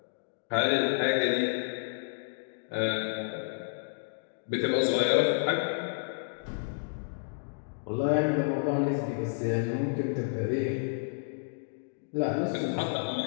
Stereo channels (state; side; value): silent; right; digital silence